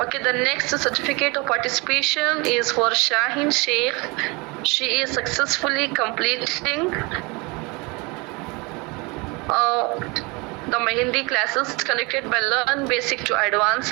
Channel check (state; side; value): quieter; left; 27.3 dB